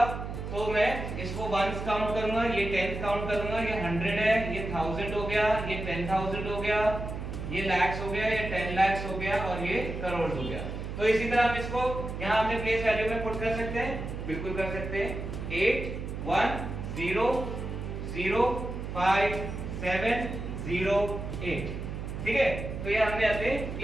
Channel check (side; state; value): right; noise; hum, 6 dB below the sound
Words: तो मैं इसको वंस काउंट करूंगा, ये टेंस काउंट करूंगा, ये 100 है, ये 1000 हो गया, ये 10,000 हो गया, ये लैक्स हो गया, ये 10 lakhs हो गया और ये करोड़ हो गया। तो इसी तरह हम इसको यहाँ अपने प्लेस वैल्यू में पुट कर सकते हैं, बिल्कुल कर सकते हैं। 8 1 0 0 5 7 0 8, ठीक है। तो ये हमने अपने